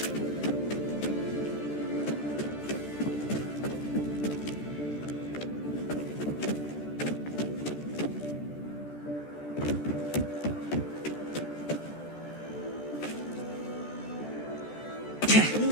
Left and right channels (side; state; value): right; late; 14 ms